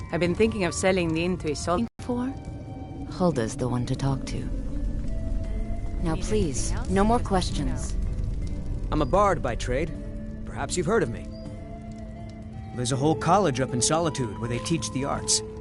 I've been thinking of selling the inn to a salt. For? Hulda's the one to talk to. Now please, no more questions. I'm a bard by trade. Perhaps you've heard of me. There's a whole college up in Solitude where they teach the arts.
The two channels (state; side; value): identical; both; correlation 1.00